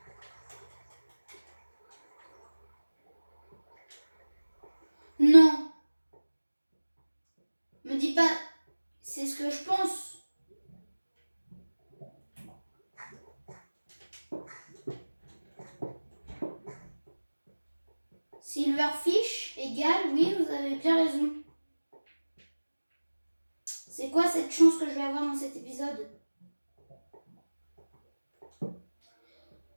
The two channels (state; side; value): inverted; both; correlation -1.00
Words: Non. Me dis pas, c'est ce que je pense. Silverfish égale, oui, vous avez bien raison. C'est quoi cette chance que je vais avoir dans cet épisode?